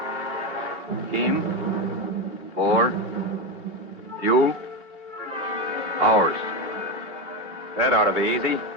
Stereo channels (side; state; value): left; late; 3.1 ms